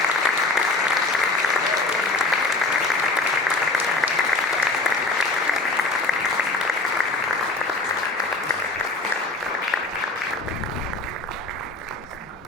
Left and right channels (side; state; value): right; quieter; 3.2 dB